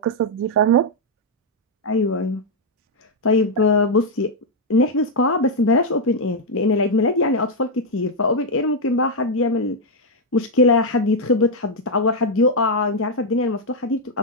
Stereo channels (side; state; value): both; normal; correlation -0.01